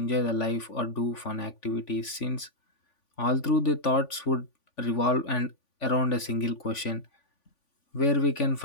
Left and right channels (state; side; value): late; right; 3.5 ms